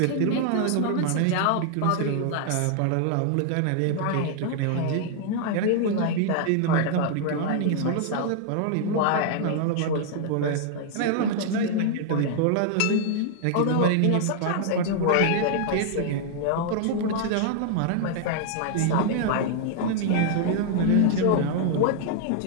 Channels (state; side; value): different; both; correlation 0.00